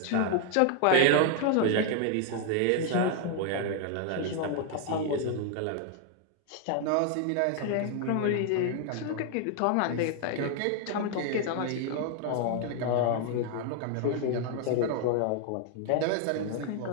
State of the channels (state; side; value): different; both; correlation 0.00